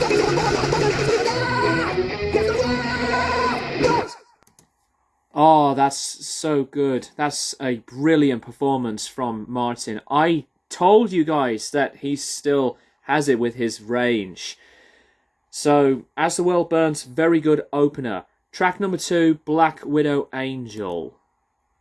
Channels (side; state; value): both; identical; correlation 1.00